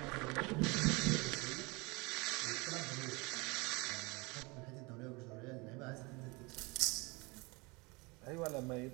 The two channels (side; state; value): left; quieter; 26.4 dB